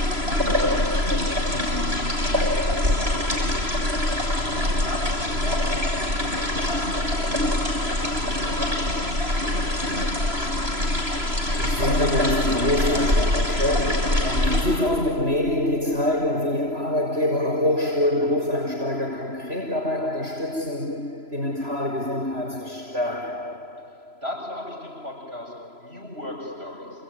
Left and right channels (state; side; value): late; left; 3.0 ms